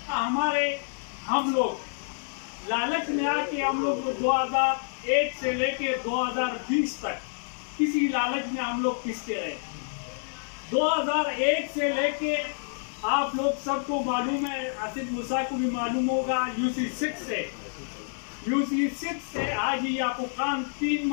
हम लोग लालच में आके हम लोग 2001 से लेके 2020 तक किसी लालच में हम लोग पिसते रहे। 2001 से लेके आप लोग सबको मालूम है, आसिफ मूसा को भी मालूम होगा, UC6 से आज ही आपको काम 3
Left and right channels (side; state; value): right; silent; digital silence